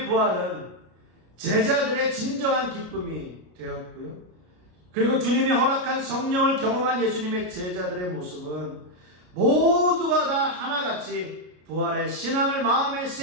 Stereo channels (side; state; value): left; late; 33 ms